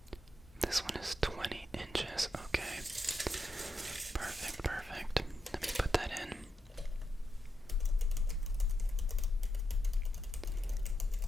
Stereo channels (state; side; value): normal; both; correlation 0.84